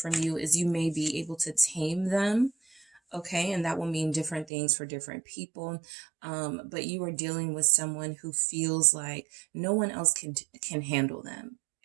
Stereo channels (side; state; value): left; drops out; at 4.5 s